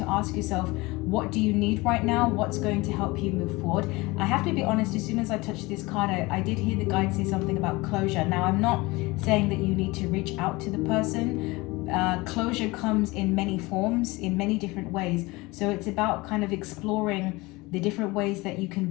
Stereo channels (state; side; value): quieter; right; 22.7 dB